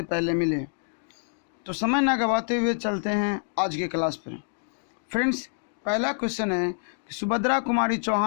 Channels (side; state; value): right; silent; digital silence